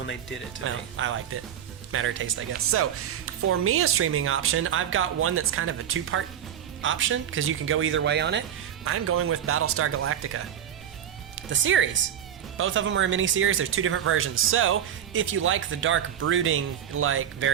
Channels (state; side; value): quieter; left; 9.6 dB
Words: they did it to me. I liked it. Matter of taste, I guess. So, for me, a streaming option, I've got one that's kind of a two-part option, because you can go either way on it. I'm going with Battlestar Galactica. The series. Both of them are a mini-series. There's two different versions. So, if you like the dark, brooding,